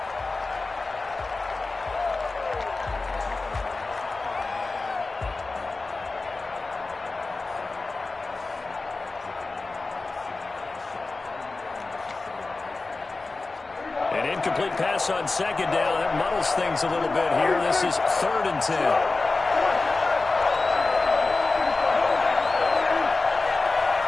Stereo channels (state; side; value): quieter; right; 3.6 dB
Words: Incomplete pass on 2nd down. That muddles things a little bit here. This is 3rd and 10.